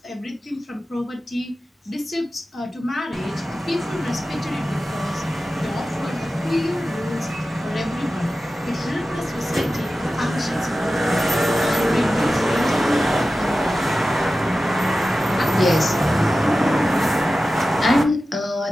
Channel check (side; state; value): both; normal; correlation 0.94